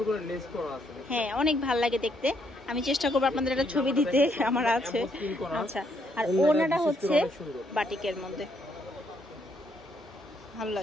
করে লেস করা আছে। হ্যাঁ, অনেক ভালো লাগে দেখতে। আমি চেষ্টা করবো আপনাদের একটা ছবি দিতে, আমার আছে। আচ্ছা, আর ওনাটা হচ্ছে বাটিকের মধ্যে, ভালো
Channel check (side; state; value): both; normal; correlation 0.73